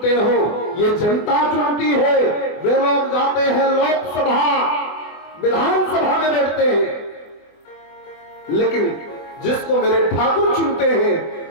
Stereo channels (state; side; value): late; right; 24 ms